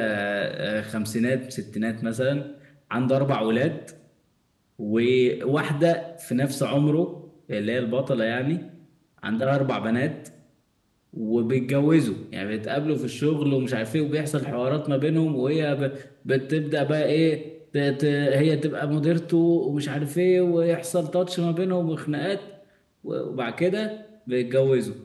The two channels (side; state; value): both; identical; correlation 1.00